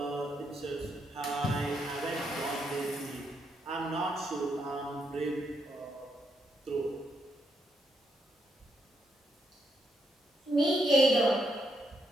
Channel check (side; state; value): both; normal; correlation 0.78